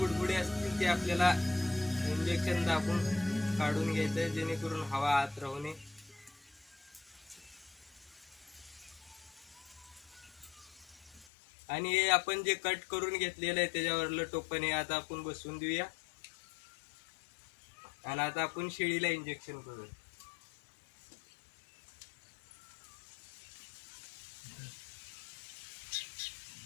असतील ते आपल्याला इंजेक्शन दाबून काढून घ्यायचं आहे, जेणेकरून हवा आत राहू नये। आणि हे आपण जे कट करून घेतलेलं आहे त्याच्यावरलं टोपण हे आता आपण बसवून देऊया। आणि आता आपण शेळीला इंजेक्शन करू।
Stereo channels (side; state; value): right; drops out; at 11.2 s